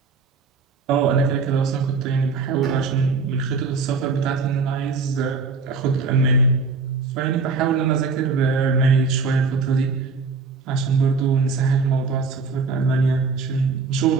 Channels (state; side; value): quieter; left; 4.6 dB